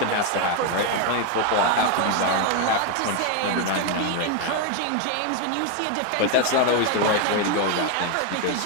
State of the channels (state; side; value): different; both; correlation 0.01